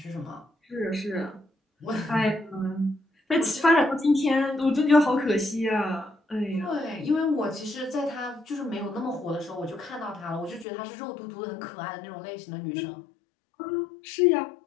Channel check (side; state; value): right; drops out; at 10.7 s